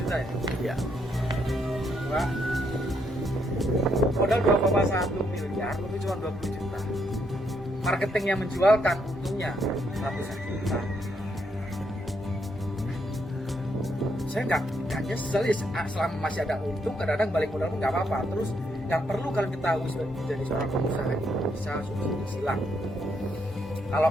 juta ya? Ya. Modal 2,1 miliar untung cuma 20 juta. Marketing yang menjualkan untungnya ratusan juta. Saya nggak nyesel ya, selama masih ada untung, kadang-kadang balik modal pun nggak apa-apa. Terus yang perlu kalian ketahui sebagai menjadi seorang pengusaha itu bisa subsidi silang. Kalau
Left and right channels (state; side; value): normal; both; correlation 0.75